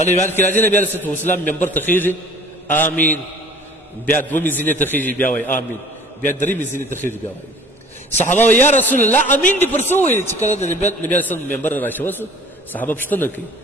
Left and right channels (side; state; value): both; normal; correlation 0.49